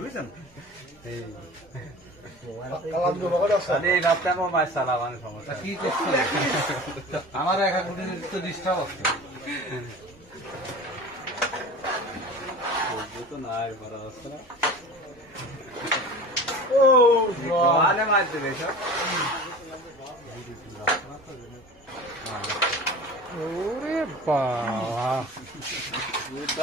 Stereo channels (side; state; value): both; normal; correlation 0.37